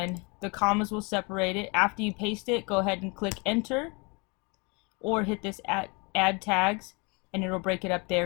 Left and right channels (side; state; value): right; quieter; 30.0 dB